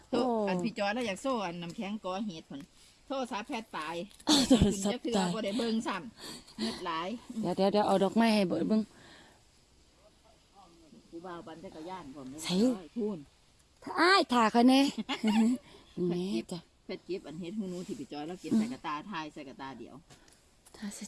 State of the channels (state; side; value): identical; both; correlation 1.00